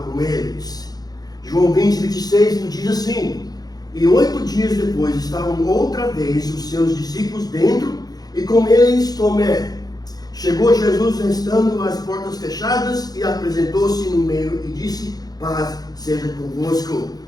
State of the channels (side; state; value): right; late; 0.19 ms